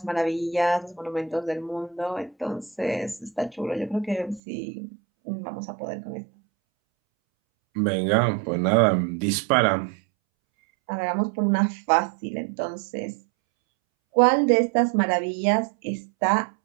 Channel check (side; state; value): left; drops out; at 4.4 s